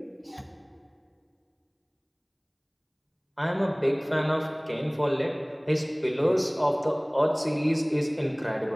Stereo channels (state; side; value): identical; both; correlation 1.00